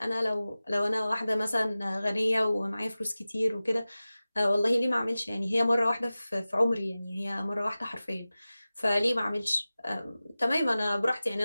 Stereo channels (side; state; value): both; inverted; correlation -0.96